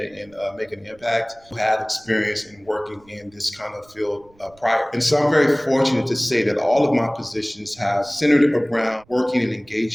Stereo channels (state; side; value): noise; right; rumble, 29 dB below the sound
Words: make an impact, who had experience in working in this kind of field prior. And so I'm very fortunate to say that all of my positions have centered around working and